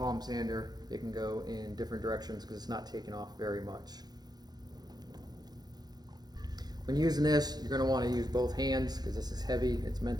sander, it can go in different directions because it's not taking off very much. When using this, you're going to want to use both hands because this is heavy. It's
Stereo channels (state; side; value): late; left; 0.19 ms